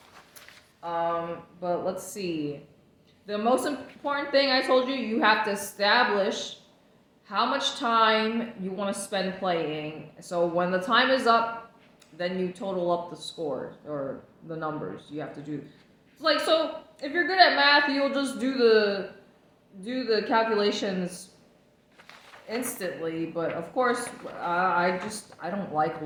But let's see. The most important thing I told you, you have to establish how much time you want to spend playing. So when the time is up, then you total up the score or the numbers you have to do. Like, so if you're good at math, you'll just do the calculations instantly. But of course, I don't like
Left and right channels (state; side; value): identical; both; correlation 1.00